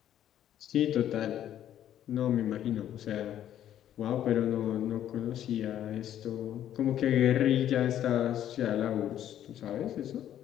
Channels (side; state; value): right; quieter; 11.1 dB